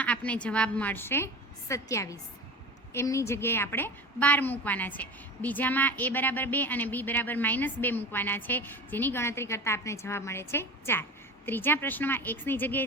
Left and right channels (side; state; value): both; normal; correlation 0.33